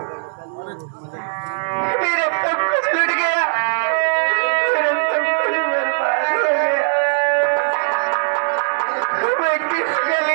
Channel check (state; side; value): silent; left; digital silence